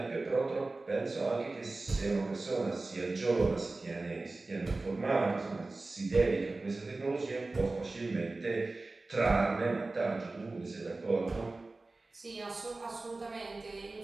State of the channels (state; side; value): quieter; left; 3.3 dB